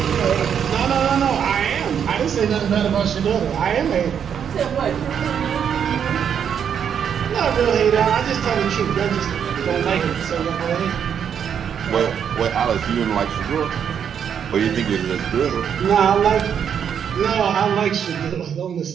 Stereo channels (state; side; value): quieter; left; 8.1 dB